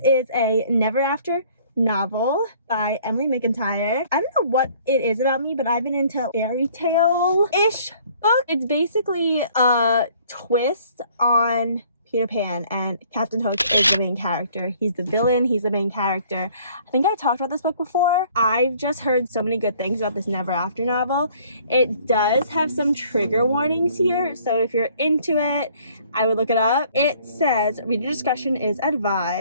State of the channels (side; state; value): both; inverted; correlation -0.58